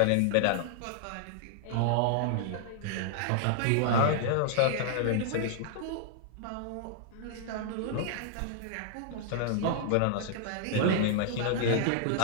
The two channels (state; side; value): different; both; correlation -0.01